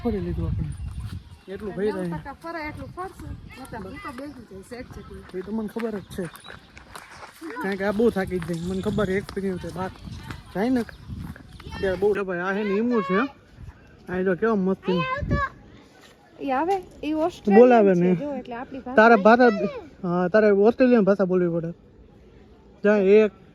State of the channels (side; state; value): both; identical; correlation 1.00